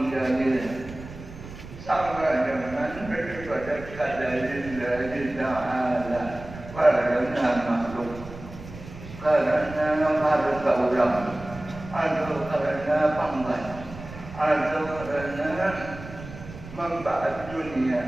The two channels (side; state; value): right; noise; rumble, 14 dB below the sound